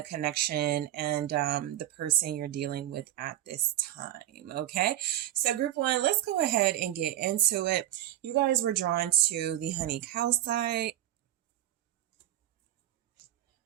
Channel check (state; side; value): quieter; left; 12.9 dB